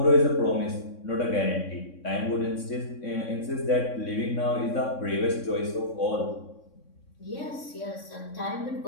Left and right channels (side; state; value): right; late; 3.6 ms